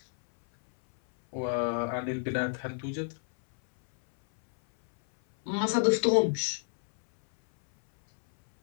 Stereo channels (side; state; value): right; silent; 59 dB below the other